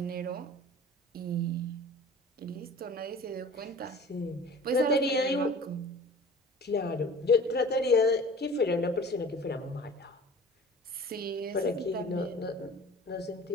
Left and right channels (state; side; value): normal; both; correlation 0.43